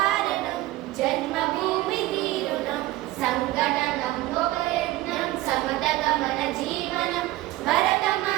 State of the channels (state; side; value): quieter; left; 17.2 dB